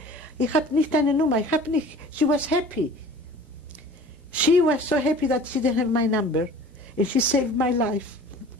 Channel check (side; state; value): both; normal; correlation 0.45